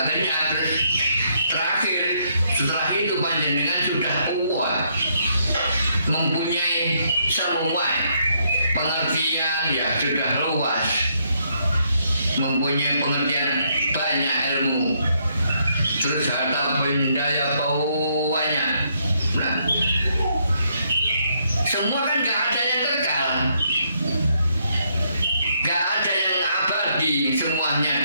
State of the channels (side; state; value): both; inverted; correlation -0.73